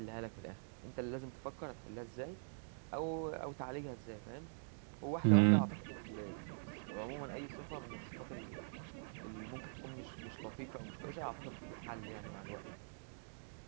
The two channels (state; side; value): silent; left; digital silence